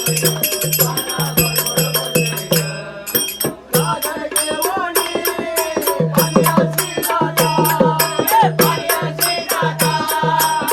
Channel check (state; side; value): identical; both; correlation 1.00